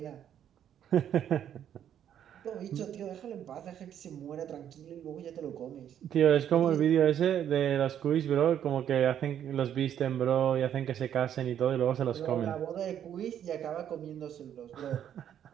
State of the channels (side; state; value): left; quieter; 9.9 dB